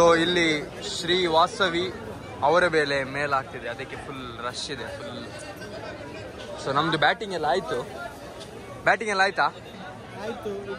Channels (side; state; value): both; identical; correlation 1.00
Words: ಇಲ್ಲಿ ಶ್ರೀ ವಾಸವಿ ಅವರ ಬೆಲೆ ಮೇಲಾಗ್ತಿದೆ, ಅದಕ್ಕೆ ಫುಲ್ ರಶ್ ಇದೆ ಫುಲ್. ಸೊ ನಮ್ದು ಬ್ಯಾಟಿಂಗ್ ಎಲ್ಲ ಆಯ್ತಾ? ಆಯ್ತು.